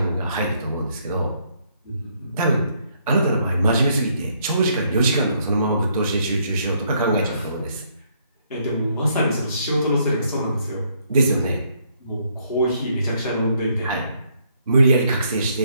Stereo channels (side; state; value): both; inverted; correlation -0.70